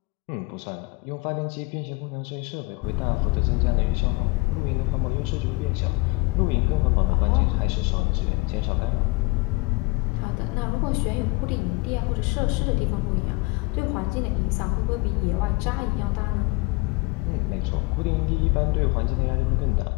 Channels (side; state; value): right; quieter; 24.9 dB